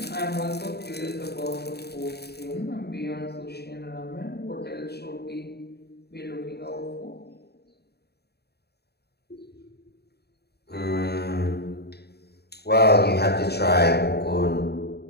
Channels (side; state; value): right; late; 0.47 ms